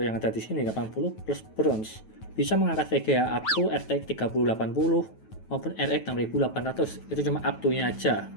yang ada di sini 80 plus Browns bisa mengangkat VGA up to RTX 3080 maupun RX 6800. Itu cuma up to-nya aja.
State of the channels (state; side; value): late; right; 9.2 ms